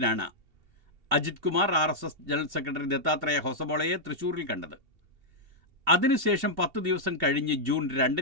Ajith Kumar RSS general secretary Dattatreya ഹൊസബോളയെ തൃശൂരിൽ കണ്ടത്. അതിനുശേഷം 10 ദിവസം കഴിഞ്ഞ് ജൂൺ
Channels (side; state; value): left; late; 2.7 ms